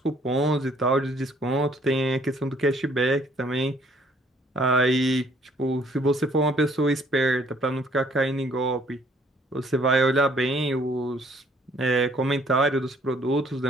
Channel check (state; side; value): normal; both; correlation 0.62